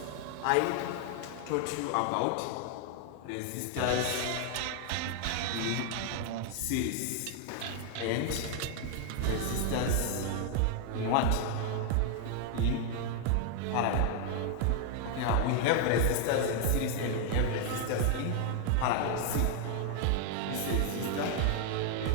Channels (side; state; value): both; different; correlation 0.00